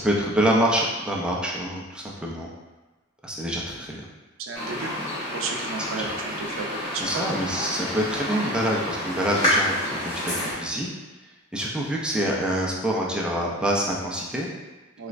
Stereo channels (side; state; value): both; normal; correlation 0.39